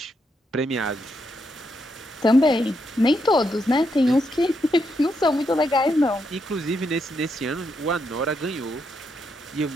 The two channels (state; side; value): normal; both; correlation 0.80